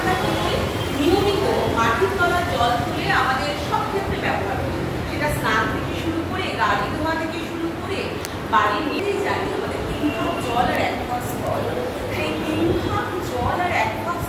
কি করি, নিয়মিত মাটির তলার জল তুলে আমাদের সব ক্ষেত্রে ব্যবহার করি। সেটা স্নান থেকে শুরু করে, গাড়ি ধোয়া থেকে শুরু করে, বাড়ির নিজেই জানি আমাদের 3 ভাগ জল আর 1 ভাগ স্থল। সেই 3 ভাগ জল আর 1 ভাগ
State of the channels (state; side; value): identical; both; correlation 1.00